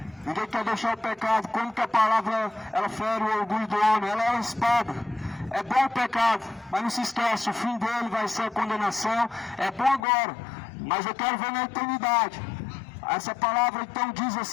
Ninguém quer deixar o pecado. Como que a palavra ela fere o orgulho do homem? Ela é uma espada. É bom o pecado, mas não se esquece, o fim dele vai ser a condenação. É bom agora, mas eu quero ver na eternidade. Essa palavra então diz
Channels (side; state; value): right; drops out; at 10.0 s